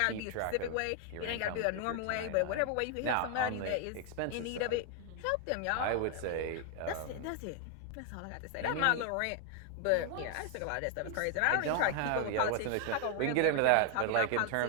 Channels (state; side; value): different; both; correlation 0.00